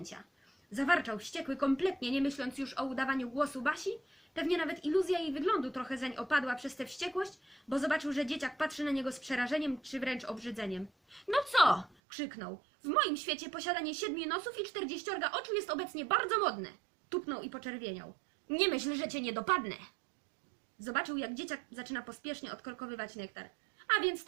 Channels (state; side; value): drops out; left; at 11.9 s